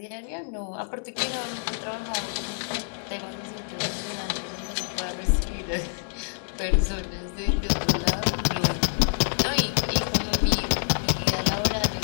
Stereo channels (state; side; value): silent; right; digital silence